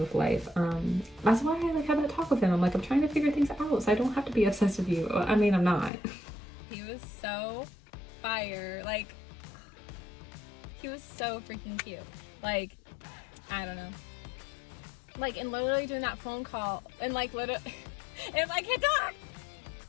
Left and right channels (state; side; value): drops out; right; at 5.9 s